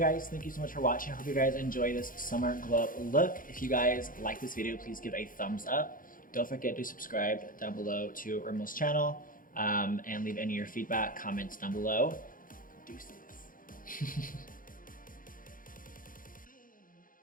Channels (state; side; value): late; right; 0.40 ms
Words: guys, thank you so much for watching. I hope you guys enjoy this summer glow up look. If you guys like this video, please give a thumbs up. Don't forget to subscribe down below to Rimmel's channel, and leave any of your feedback, comments down below. Deuces.